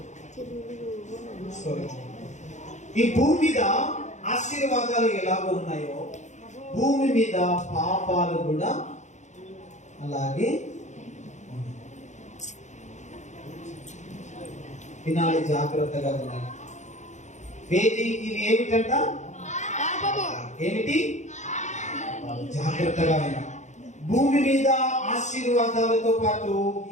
ఈ భూమి మీద ఆశీర్వాదాలు ఎలాగో ఉన్నాయో భూమి మీద పాపాలు కూడా అలాగే వినాలి. జాగ్రత్తగా వినాలి. ఇది ఏమిటంట? ఏమిటి? జాగ్రత్తగా వినాలి. భూమి మీద ఆశీర్వాదాలతో పాటు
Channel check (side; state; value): right; late; 0.34 ms